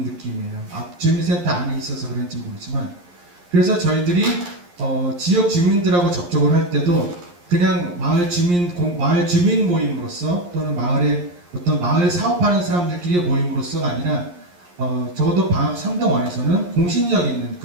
느낌이에요. 주민센터 안에 있어서 그런지 모르지만 그래서 저희들이 지역 주민들하고 접촉을 할 때도 그냥 마을 주민 모임으로서 또는 마을의 어떤 마을 사업하는 사람들끼리의 모임으로서가 아니라 적어도 방학 3동안에서는 공신력 있는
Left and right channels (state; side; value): late; left; 11 ms